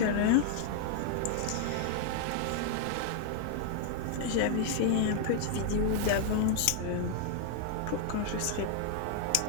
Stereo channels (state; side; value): different; both; correlation 0.00